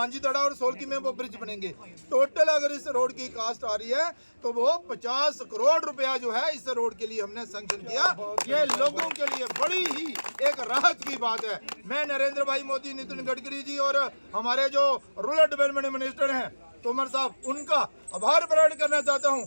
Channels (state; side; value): inverted; both; correlation -1.00